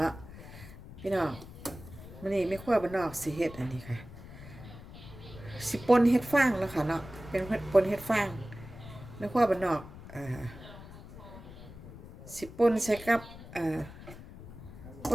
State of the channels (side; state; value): left; noise; rumble, 15 dB below the sound